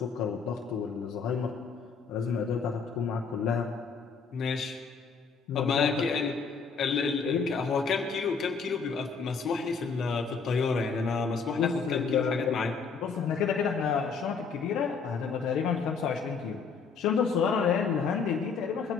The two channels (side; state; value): right; quieter; 5.4 dB